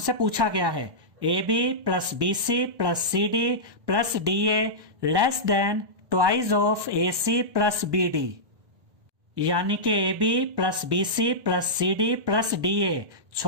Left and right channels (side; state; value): left; late; 1.1 ms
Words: पूछा गया है, AB plus BC plus CD plus DA less than twice of AC plus BD, यानी कि AB plus BC plus CD plus DA